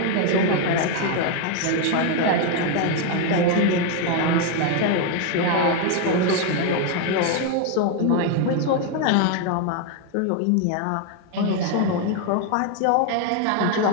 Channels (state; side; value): different; both; correlation 0.01